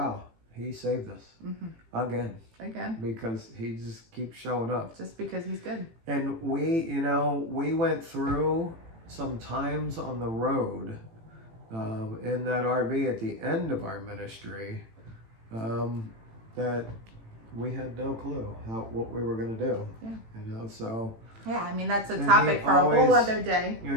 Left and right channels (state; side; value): late; left; 18 ms